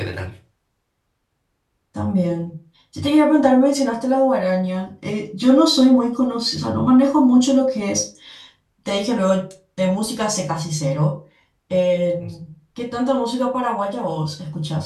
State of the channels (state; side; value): identical; both; correlation 1.00